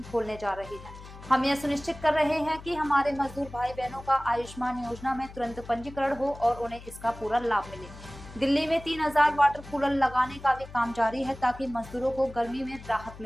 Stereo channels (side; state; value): left; noise; hum, 16 dB below the sound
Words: खोलने जा रहे हैं। हम यह सुनिश्चित कर रहे हैं कि हमारे मजदूर भाई बहनों का आयुष्मान योजना में तुरंत पंजीकरण हो और उन्हें इसका पूरा लाभ मिले। दिल्ली में 3000 वाटर कूलर लगाने का भी काम जारी है ताकि मजदूरों को गर्मी में राहत